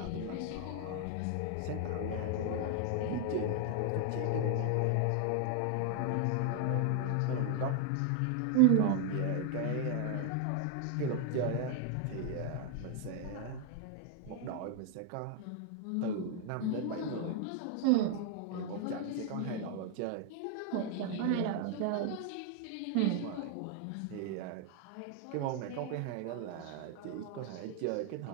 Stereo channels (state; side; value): different; both; correlation 0.00